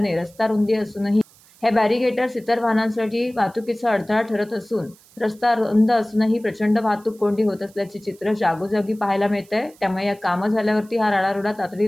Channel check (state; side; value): noise; right; hiss, 27 dB below the sound